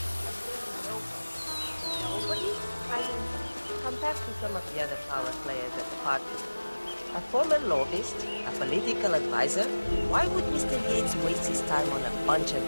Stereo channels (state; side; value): inverted; both; correlation -1.00